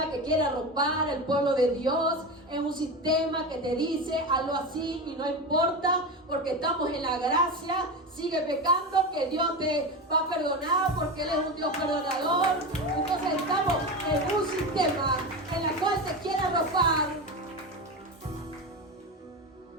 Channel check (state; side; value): normal; both; correlation 0.21